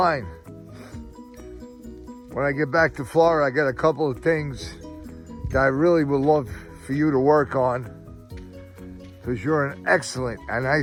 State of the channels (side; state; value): both; identical; correlation 1.00